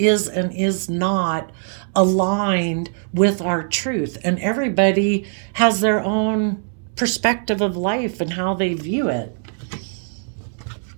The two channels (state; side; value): silent; left; 65 dB below the other